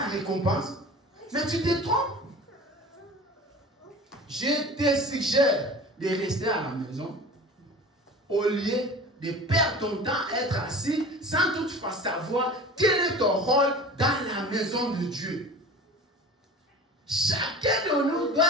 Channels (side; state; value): both; normal; correlation 0.38